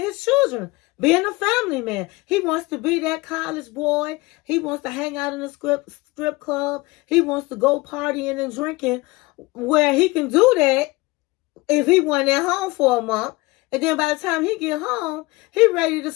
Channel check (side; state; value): right; quieter; 22.5 dB